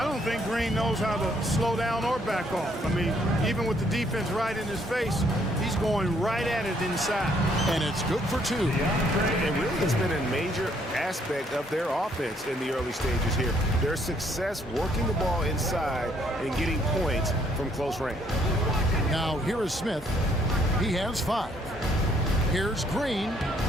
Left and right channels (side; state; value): both; normal; correlation 0.68